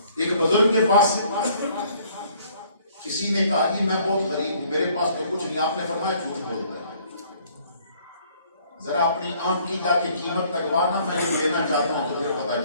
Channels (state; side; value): inverted; both; correlation -0.60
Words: ایک بزرگ کے پاس کسی نے کہا کہ میں بہت غریب ہوں، میرے پاس تو کچھ نہیں، آپ نے فرمایا جھوٹ بولتا ہے، ذرا اپنی آنکھ کی جا کے قیمت لگوانا، میں لینا چاہتا ہوں تو پھر پتا